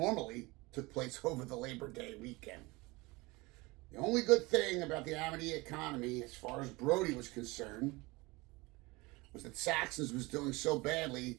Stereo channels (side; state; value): left; quieter; 23.5 dB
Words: took place over the Labor Day weekend. The only good thing about the Amity economy, as far as Brody was concerned, was that Saxon's was doing so